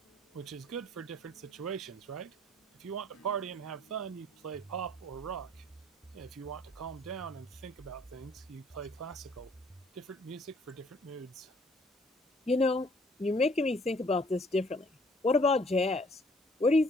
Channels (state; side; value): normal; both; correlation 0.60